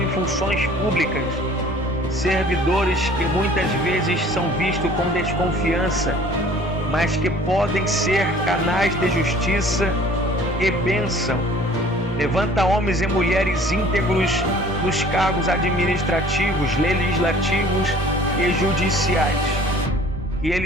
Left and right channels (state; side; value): normal; both; correlation 0.51